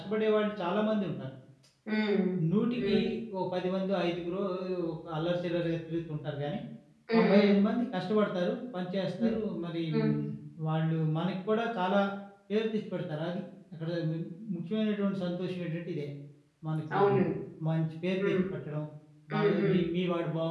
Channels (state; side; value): identical; both; correlation 1.00